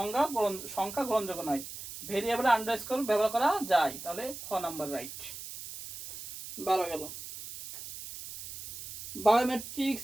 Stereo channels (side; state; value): right; noise; hiss, 11 dB below the sound